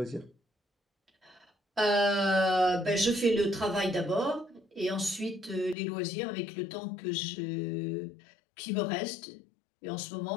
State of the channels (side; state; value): right; drops out; at 5.8 s